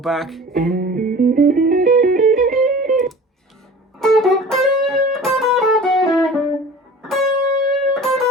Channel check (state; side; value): normal; both; correlation 0.41